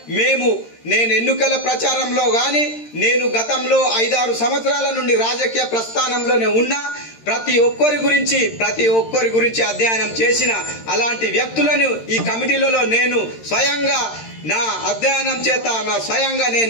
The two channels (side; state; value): right; late; 13 ms